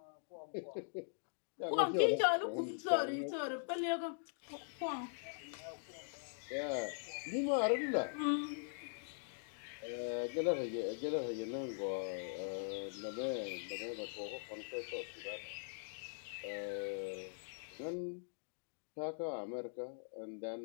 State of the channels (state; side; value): silent; right; digital silence